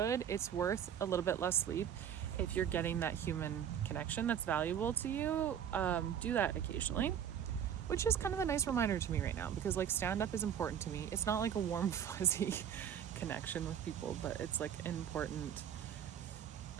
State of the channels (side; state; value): left; quieter; 9.0 dB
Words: worth a little bit less sleep if you're getting that human connection that's valuable to you. Do that occasionally, which is kind of a nice reminder to me right now, because like stand-up is important to me. It's not like a warm fuzzy connection with people, but it's like an important